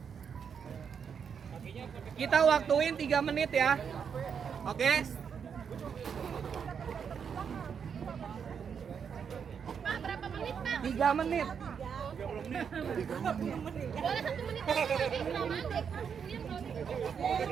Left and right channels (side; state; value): left; quieter; 7.0 dB